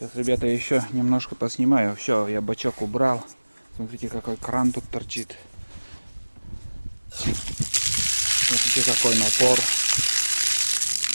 ребята, еще немножко поснимаю. Все, я бачок убрал. Смотрите, какой кран тут торчит. Смотрите, какой напор.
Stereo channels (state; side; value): inverted; both; correlation -1.00